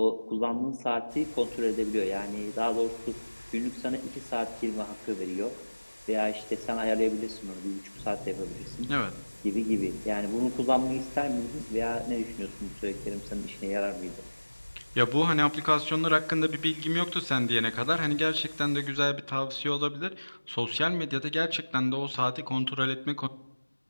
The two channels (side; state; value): both; inverted; correlation -1.00